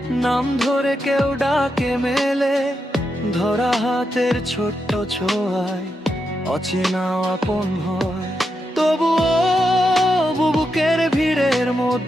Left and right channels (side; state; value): both; normal; correlation 0.85